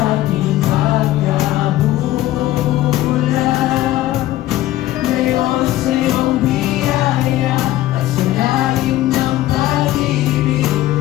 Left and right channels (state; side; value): quieter; right; 15.1 dB